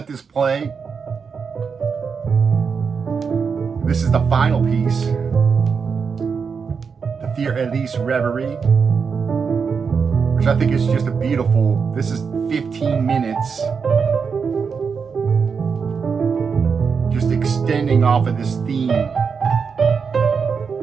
this play. This is the final piece, the Für Elise Reverie, which I think is just a beautiful, this is 15 minutes, just extending off of this theme.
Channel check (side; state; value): left; quieter; 5.8 dB